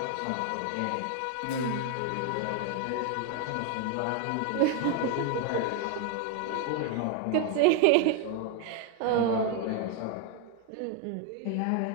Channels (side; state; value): both; different; correlation 0.01